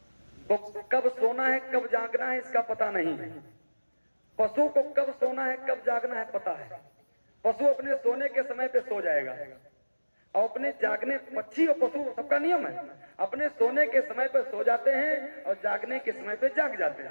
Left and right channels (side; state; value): both; inverted; correlation -1.00